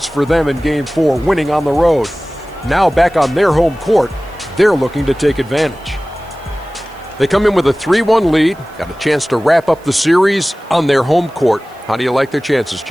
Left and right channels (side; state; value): right; noise; hiss, 29 dB below the sound